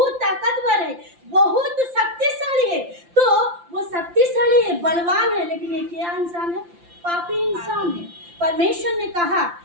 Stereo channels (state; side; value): late; left; 5.8 ms